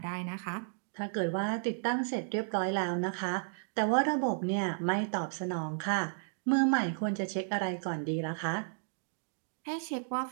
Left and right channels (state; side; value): silent; left; digital silence